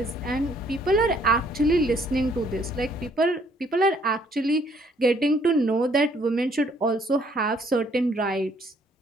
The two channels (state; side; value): normal; both; correlation 0.64